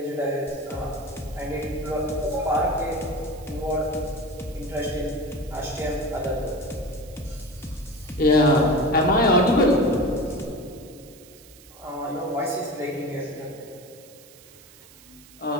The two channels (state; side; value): noise; right; hiss, 22 dB below the sound